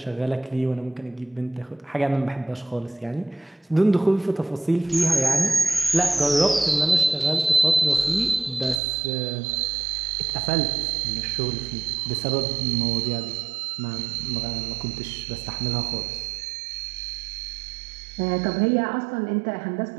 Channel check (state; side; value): drops out; left; at 8.8 s